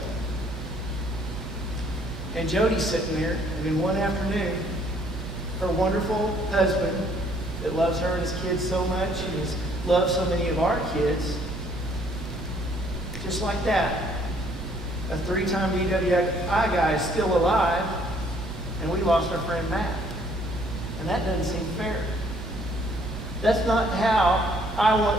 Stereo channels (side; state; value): both; normal; correlation 0.63